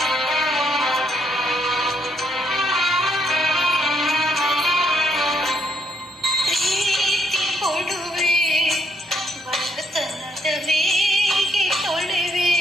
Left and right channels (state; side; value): normal; both; correlation 0.72